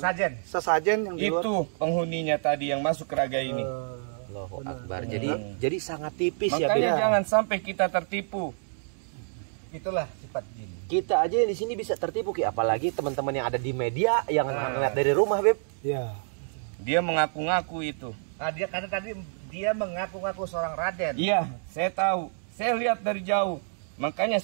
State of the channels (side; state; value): left; silent; digital silence